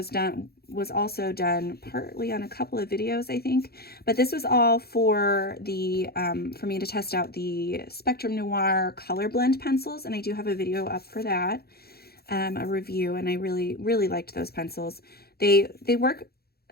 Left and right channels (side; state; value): right; late; 0.46 ms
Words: was also done partly on a couple of videos, I think, but this was all for the, for me to test out the Spectrum Noir color blend pencils. And I do have a video up for that, a review, and I really, really liked those pencils. They work